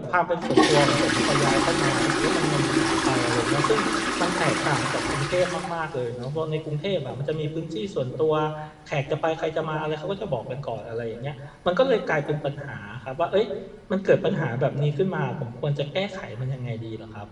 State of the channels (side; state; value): both; identical; correlation 1.00